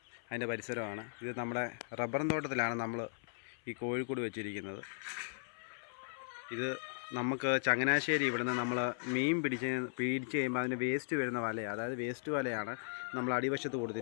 അതിൻ്റെ പരിസരമാണ്. ഇത് നമ്മുടെ റബ്ബറും തോട്ടത്തിലാണ് നമ്മൾ ഈ കോഴിക്കൂട് വെച്ചിരിക്കുന്നത്. ഇത് നമുക്ക് ചങ്ങനാശ്ശേരി ഇവിടുന്ന് നമ്മൾ മീൻ പിടിച്ച് കഴിയുമ്പോൾ അതിന് വേസ്റ്റ് വരുന്ന വലയാണ്, അതായത് വേസ്റ്റ് വലയാണ് നമ്മൾ അടിവശത്ത്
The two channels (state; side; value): silent; right; 53 dB below the other